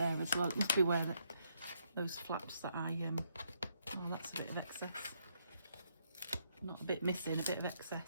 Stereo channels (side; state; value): both; inverted; correlation -0.75